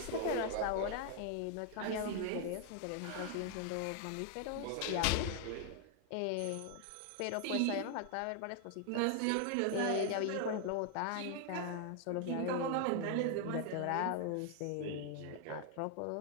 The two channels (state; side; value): different; both; correlation 0.00